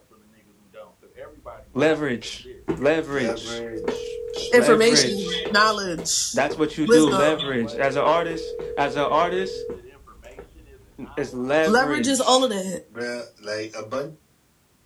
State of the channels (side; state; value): both; identical; correlation 1.00